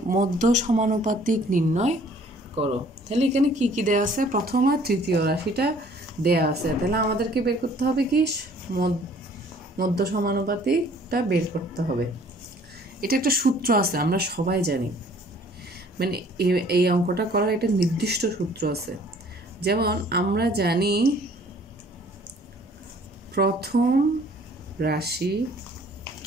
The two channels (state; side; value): normal; both; correlation 0.56